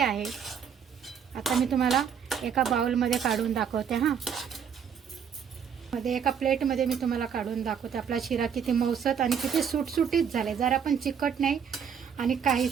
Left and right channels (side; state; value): left; quieter; 7.5 dB